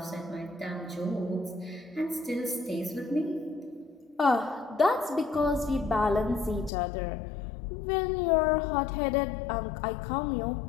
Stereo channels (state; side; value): drops out; right; at 6.7 s